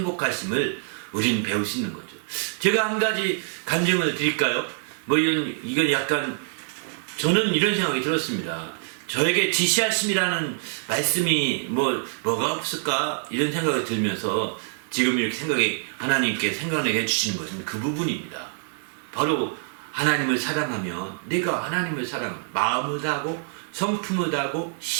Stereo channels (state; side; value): silent; left; digital silence